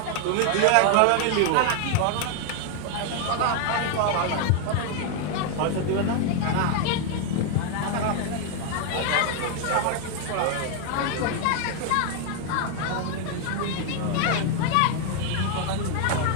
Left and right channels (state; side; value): different; both; correlation 0.00